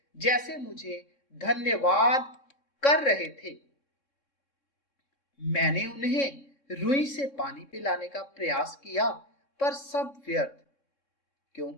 जैसे मुझे धन्यवाद कर रहे थे। मैंने उन्हें रुई से पानी पिलाने का प्रयास किया, पर सब व्यर्थ,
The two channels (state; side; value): late; right; 3.6 ms